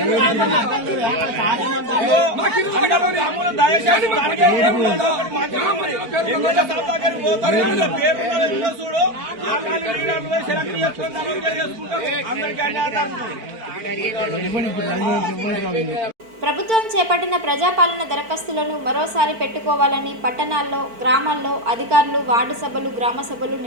దయచేసి పేరు చూడు, సెలెక్ట్ చేసుకుంటారు. అందరికీ అన్యాయం. ప్రభుత్వం చేపట్టిన ప్రజాపాలన దరఖాస్తులను మరోసారి పెట్టుకోవాలని పట్టణాల్లో, గ్రామాల్లో అధికారులు వార్డు సభలు, గ్రామ సభలు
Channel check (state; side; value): late; left; 4.5 ms